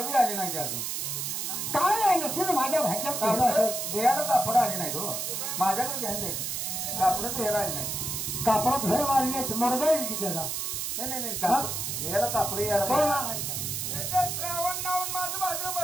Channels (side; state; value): right; noise; hiss, 2 dB below the sound